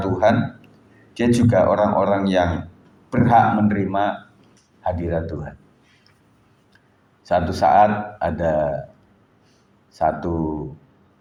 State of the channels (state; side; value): identical; both; correlation 1.00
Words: dia juga orang-orang yang berhak menerima hadirat Tuhan. Satu saat ada satu